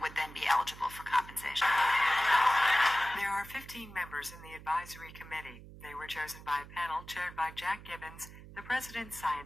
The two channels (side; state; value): right; noise; hum, 17 dB below the sound